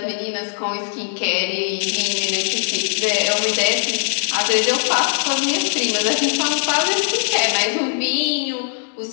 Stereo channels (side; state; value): right; silent; 66 dB below the other